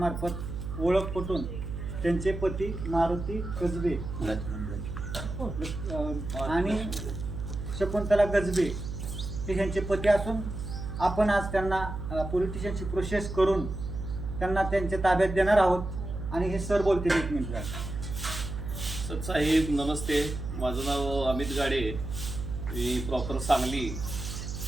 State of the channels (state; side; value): noise; right; hum, 6 dB below the sound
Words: ओळख पटून त्यांचे पती मारुती कसबे आणि शकुंतला गजबे हे ह्यांचे पती असून आपण आज त्यांना पोलीस स्टेशनची प्रोसेस करून त्यांना त्यांच्या ताब्यात देणार आहोत. आणि हे सर बोलतील 1 मिनिट. साहेब नमस्ते, माझं नाव अमित गाडे, मी प्रॉपर सांगली